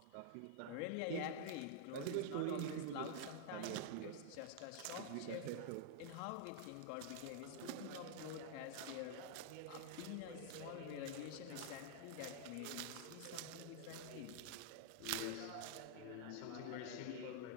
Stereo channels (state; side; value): different; both; correlation -0.01